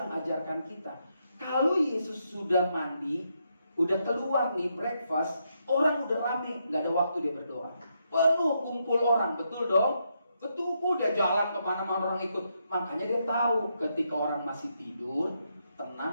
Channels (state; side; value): inverted; both; correlation -0.80